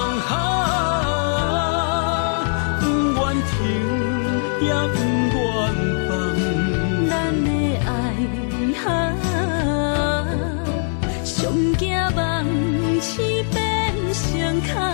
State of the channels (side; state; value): right; silent; 65 dB below the other